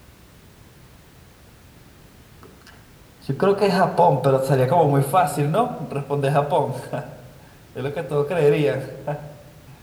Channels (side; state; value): both; identical; correlation 1.00